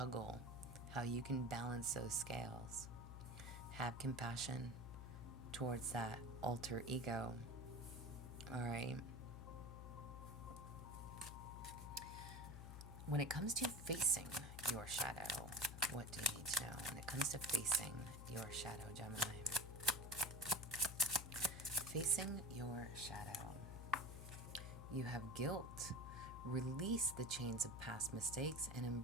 how you can balance those scales. Have compassion towards that alter ego. All right? When it comes to facing your shadow, what do you need to know? When it comes to facing your shadow, Gemini. Facing your shadow. You have guilt. Release the chains of past mistakes and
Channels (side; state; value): left; noise; hum, 9 dB below the sound